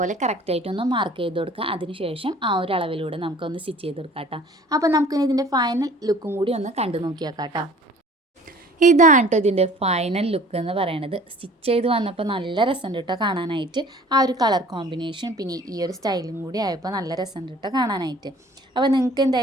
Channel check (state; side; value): normal; both; correlation 0.49